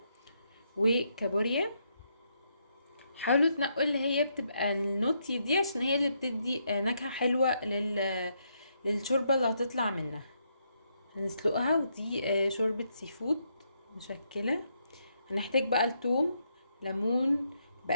وكابوريا. حاولوا تنقوا اللي هي بتبقى النوتي دي عشان هي اللي بتدي نكهه حلوه للشوربه اللي هتطلع منها. هنسلقها، ودي شوربة سي فود مشكلة. هنحتاج بقى الثوم، ليمون،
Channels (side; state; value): both; inverted; correlation -0.78